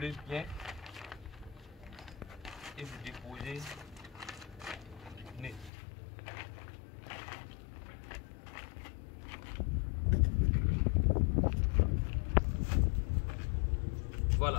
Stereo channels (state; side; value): drops out; right; at 5.7 s